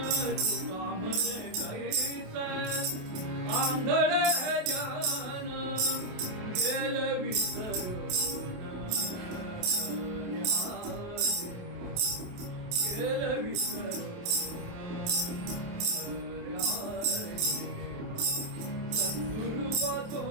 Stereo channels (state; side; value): late; left; 28 ms